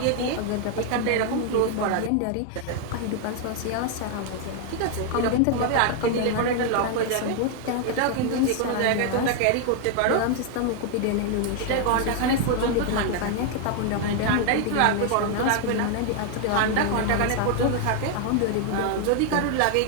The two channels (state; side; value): different; both; correlation 0.00